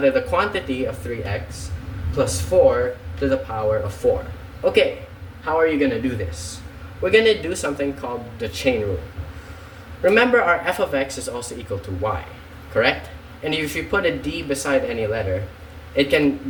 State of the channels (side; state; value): both; identical; correlation 1.00